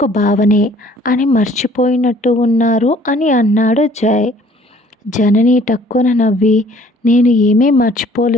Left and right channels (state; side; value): normal; both; correlation 0.56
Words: బావనే అని మర్చిపోయినట్టు ఉన్నారు అని అన్నాడు జై. జనని టక్కున నవ్వి, నేను ఏమీ